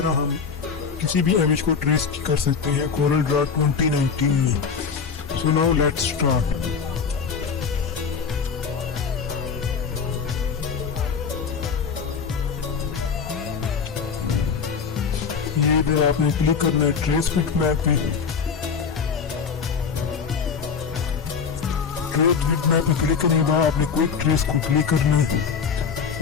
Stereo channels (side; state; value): right; quieter; 6.0 dB